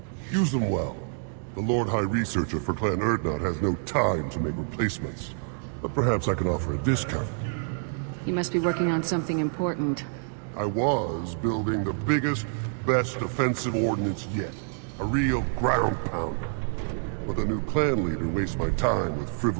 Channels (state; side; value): silent; left; 60 dB below the other